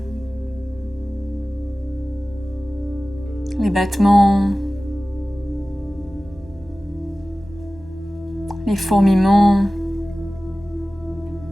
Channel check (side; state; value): both; normal; correlation 0.97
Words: les battements, les fourmillements,